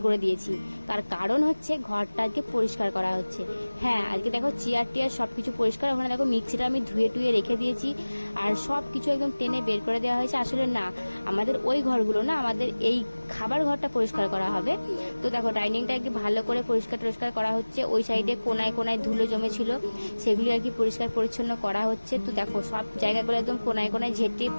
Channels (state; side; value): inverted; both; correlation -1.00